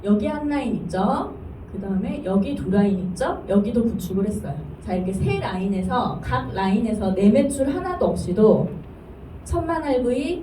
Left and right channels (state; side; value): identical; both; correlation 1.00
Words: 여기 한 라인 있죠? 그 다음에 여기 두 라인 있죠? 여기도 구축을 했어요. 자, 이렇게 세 라인에서 각 라인에서 내 매출 하나도 없이도 1000만 RV,